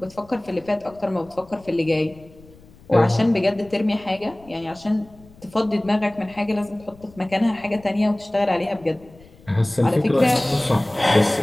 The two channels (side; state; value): left; noise; rumble, 24 dB below the sound